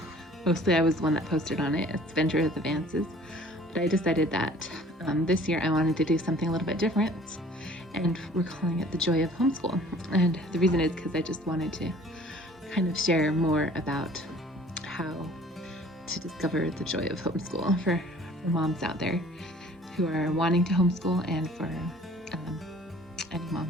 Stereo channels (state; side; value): normal; both; correlation 0.52